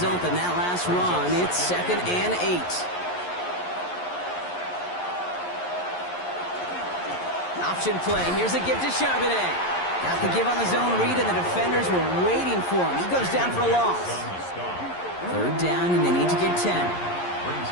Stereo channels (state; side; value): late; right; 11 ms